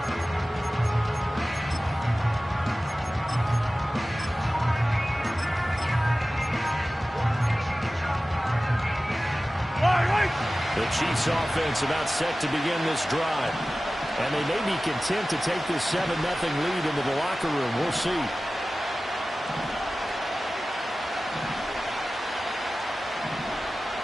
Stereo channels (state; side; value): normal; both; correlation 0.96